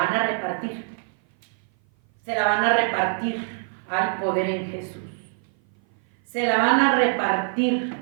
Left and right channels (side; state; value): left; silent; 57 dB below the other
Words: a repartir. Se la van a repartir. Hay poder en Jesús. Se la van a repartir